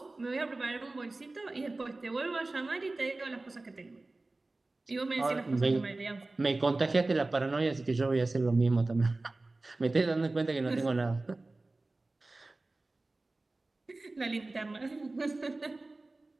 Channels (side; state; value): left; quieter; 3.1 dB